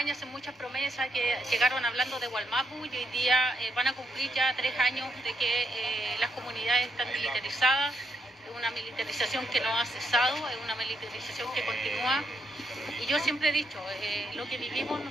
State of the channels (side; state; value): both; normal; correlation 0.78